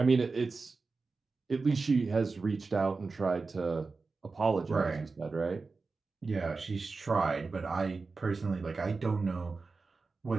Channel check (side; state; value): left; quieter; 4.1 dB